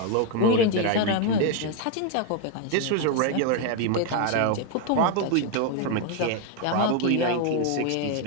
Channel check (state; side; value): different; both; correlation 0.01